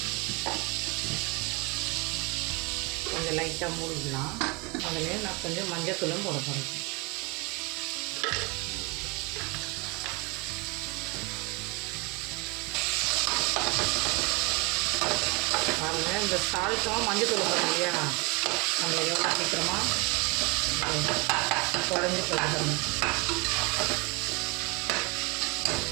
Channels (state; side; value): quieter; left; 27.8 dB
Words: கொஞ்சம் லைட்டாக மூடிக்கலாம். அதில் நான் கொஞ்சம் மஞ்சத்தூளும் போட போகிறேன். பாருங்கள், இந்த சால்ட்டும் மஞ்சத்தூளும் போடுறோம் இல்லையா, நம்ம எவ்வளோ சீக்கிரமாக குழஞ்சி போயிடணும்.